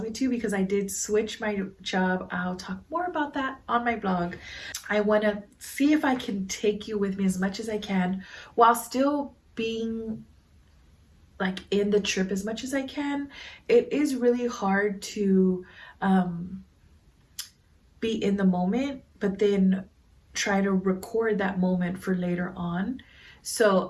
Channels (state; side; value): identical; both; correlation 1.00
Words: me to, because I did switch my job, I'll talk more about that on my blog. I want to see if I can take you with me as much as I can while still being like in the trip as much as I can. It is really hard to be in the moment, but then try to record that moment for later on.